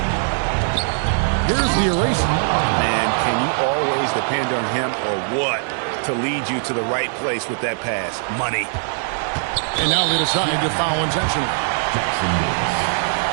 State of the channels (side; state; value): left; silent; 60 dB below the other